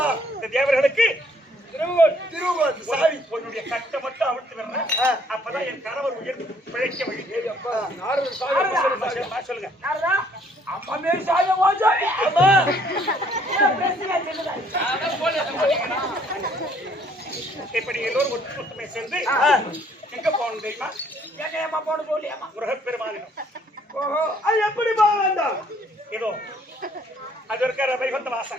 இந்த தேவர்களுக்கு திருவுகோல் சாவி. உன்னுடைய கட்டை மட்டும் அவிழ்த்து வரணும். அப்பதான் என் கணவர் உயிர் பிழைக்க வழி. சொல்லுங்க. அம்மா மேல் சாய வாஜாவி. அம்மா இப்ப நீங்க எல்லோரும் ஒற்றுமை சேர்ந்து எங்க போகணும் தெரியுமா? ஏமா போட சொல்லியாமா முருகப்பெருமானிடம். ஓஹோ அது எப்படி போக வேண்டாம்? ஏதோ அது இருக்கிற வைகுந்த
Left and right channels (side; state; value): both; normal; correlation 0.63